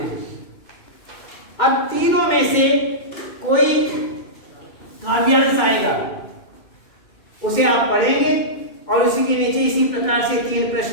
हैं। अब तीनों में से कोई काव्यांश आएगा, उसे आप पढ़ेंगे और उसी के नीचे इसी प्रकार से 3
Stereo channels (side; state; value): right; late; 2.2 ms